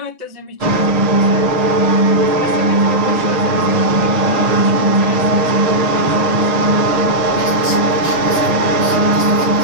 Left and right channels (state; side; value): late; left; 6.0 ms